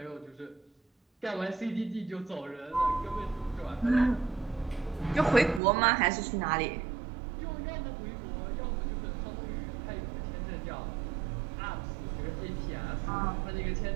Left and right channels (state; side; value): drops out; left; at 5.6 s